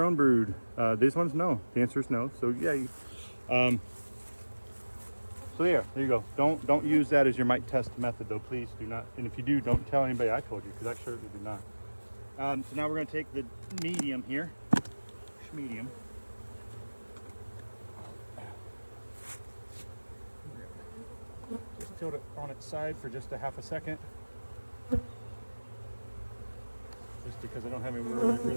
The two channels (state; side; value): inverted; both; correlation -1.00